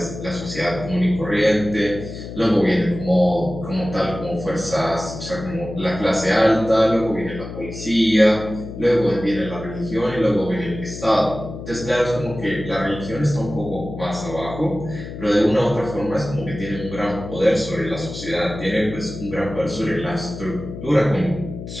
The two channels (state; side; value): noise; left; hum, 10 dB below the sound